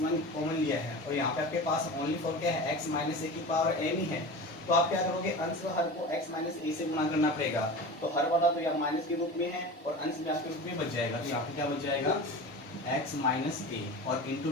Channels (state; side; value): normal; both; correlation 0.32